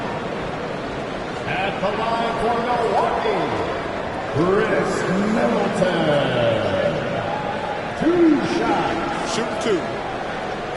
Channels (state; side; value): identical; both; correlation 1.00